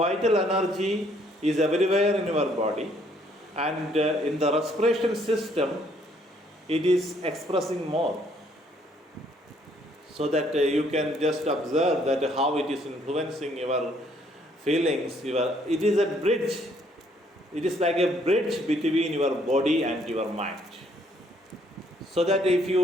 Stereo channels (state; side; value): normal; both; correlation 0.66